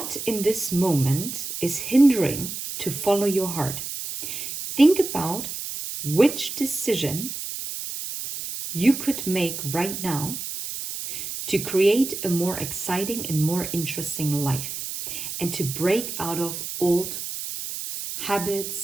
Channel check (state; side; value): noise; right; hiss, 6 dB below the sound